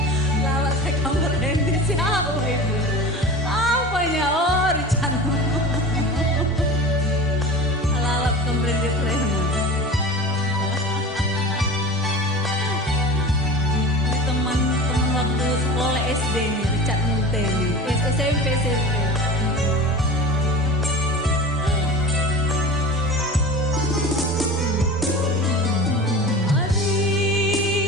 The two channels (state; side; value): normal; both; correlation 0.33